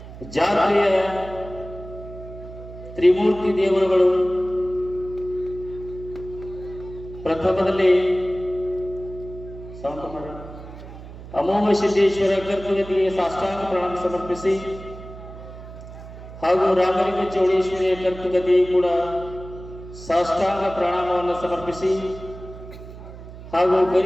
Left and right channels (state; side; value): noise; right; hum, 14 dB below the sound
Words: ಜಾತ್ರೆಯ ತ್ರಿಮೂರ್ತಿ ದೇವರುಗಳು ಪ್ರಥಮದಲ್ಲಿ ಅಮೋಘ ಸಿದ್ದೇಶ್ವರ ಕರ್ತುಗತಿಗೆ ಸಾಷ್ಟಾಂಗ ಪ್ರಣಾಮ ಸಮರ್ಪಿಸಿ ಹಾಗೂ ರಾಮಲಿಂಗ ಚೌಡೇಶ್ವರಿಯ ಕರ್ತುಗತಿ ಕೂಡ ಸಾಷ್ಟಾಂಗ ಪ್ರಣಾಮವನ್ನು ಸಮರ್ಪಿಸಿ ಹಾಗೂ